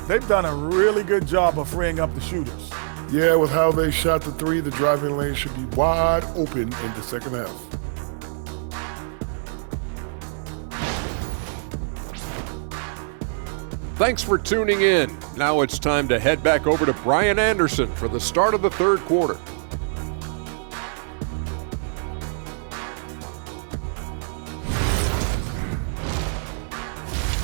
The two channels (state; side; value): silent; left; 63 dB below the other